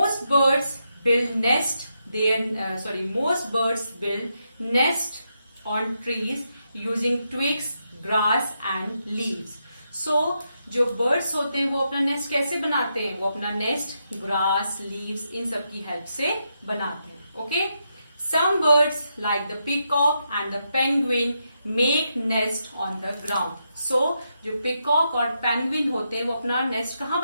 birds build nest on trees using twigs, grass and leaves. So जो बर्ड्स होते हैं वो अपना नेस्ट कैसे बनाते हैं? वो अपना नेस्ट ग्रास, लीव्स, इन सब की हेल्प से बनाते हैं। Okay, some birds like the peacock and the penguin make nest on the ground. So जो पीकॉक और पेंगुइन होते हैं वो अपना नेस्ट कहाँ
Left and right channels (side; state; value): both; inverted; correlation -0.83